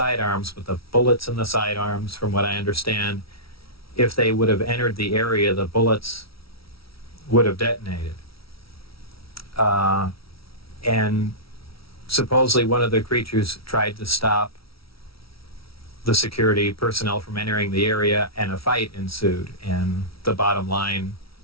but the bullets in the sidearms, from what I understand, if they would have entered the area, the bullets would have detonated. And supposedly one of the creatures tried to stop the security personnel from entering the area, and a fight ensued. And the bottom line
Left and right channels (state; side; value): late; right; 0.75 ms